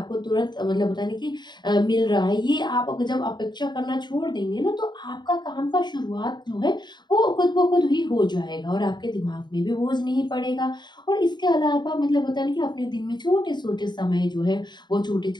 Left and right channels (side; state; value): right; late; 0.21 ms